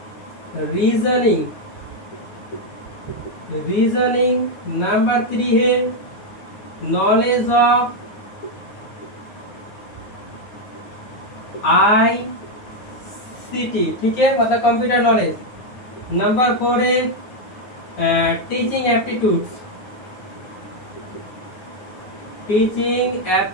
रीजनिंग। नंबर 3 है नॉलेज ऑफ ICT, ठीक है, मतलब कंप्यूटर नॉलेज। नंबर 4 है टीचिंग एप्टीट्यूड,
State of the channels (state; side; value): late; right; 9.6 ms